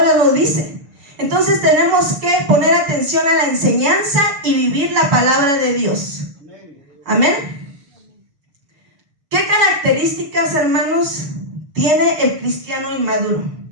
nos dice, entonces tenemos que poner atención a la enseñanza y vivir la palabra de Dios. Amén. ¿Qué características, hermanos, tiene el cristiano inmaduro?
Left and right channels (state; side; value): late; left; 6.7 ms